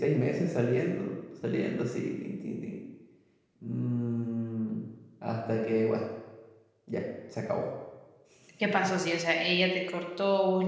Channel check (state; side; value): identical; both; correlation 1.00